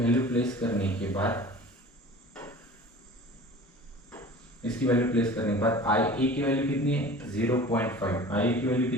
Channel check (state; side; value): normal; both; correlation 0.41